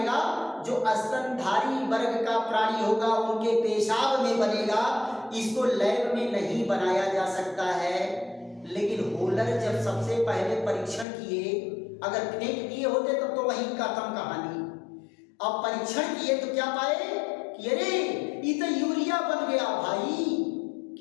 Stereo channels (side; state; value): right; drops out; at 11.1 s